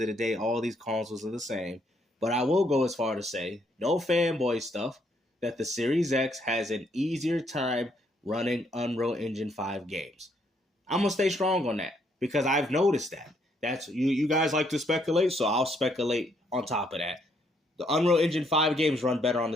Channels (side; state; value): both; normal; correlation 0.71